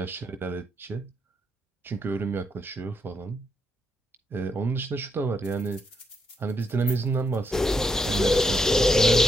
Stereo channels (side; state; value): both; normal; correlation 0.79